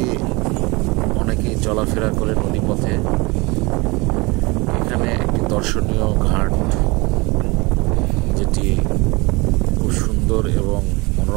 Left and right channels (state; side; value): quieter; left; 25.6 dB